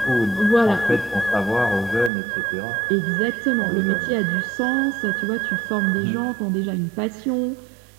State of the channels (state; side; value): drops out; left; at 2.1 s